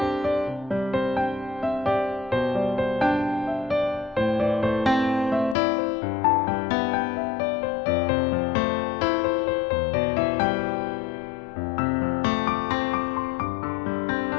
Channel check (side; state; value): right; drops out; at 5.6 s